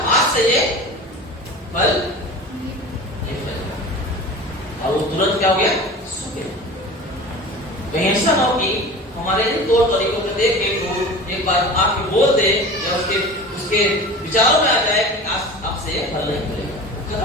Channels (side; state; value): both; normal; correlation 0.36